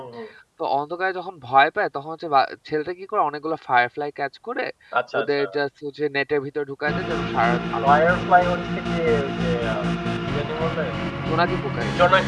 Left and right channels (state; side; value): identical; both; correlation 1.00